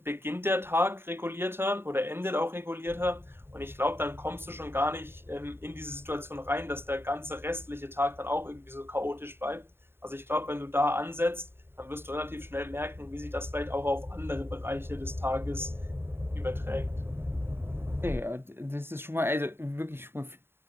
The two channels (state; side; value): late; left; 0.11 ms